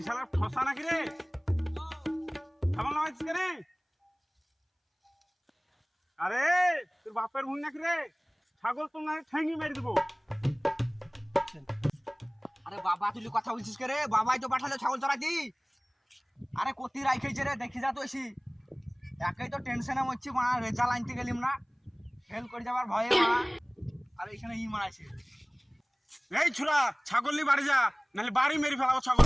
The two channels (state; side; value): identical; both; correlation 1.00